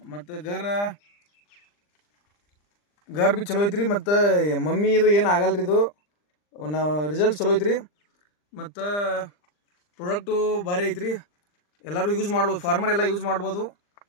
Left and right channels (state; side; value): late; right; 39 ms